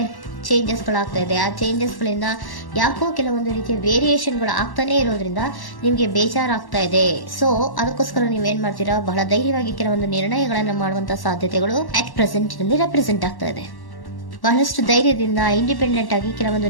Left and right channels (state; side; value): late; right; 1.1 ms